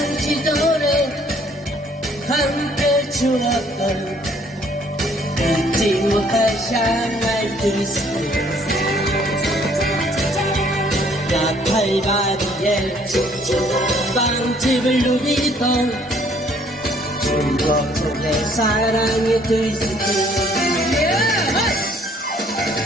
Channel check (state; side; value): normal; both; correlation 0.62